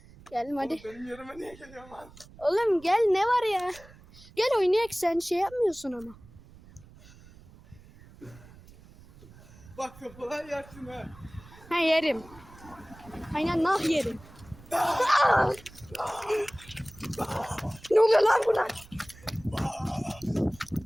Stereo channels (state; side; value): noise; right; rumble, 22 dB below the sound